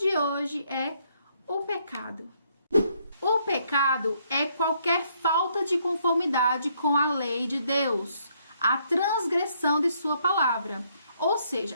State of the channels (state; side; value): inverted; both; correlation -0.71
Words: hoje é o pecado. O pecado é qualquer falta de conformidade com a lei de Deus, a transgressão de sua palavra. Ou seja,